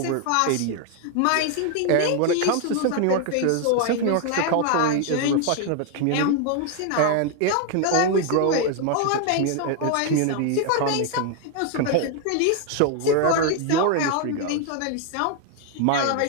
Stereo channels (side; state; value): both; different; correlation 0.00